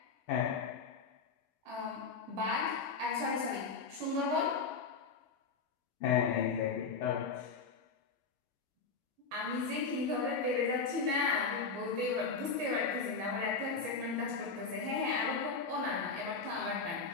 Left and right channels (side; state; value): right; quieter; 4.8 dB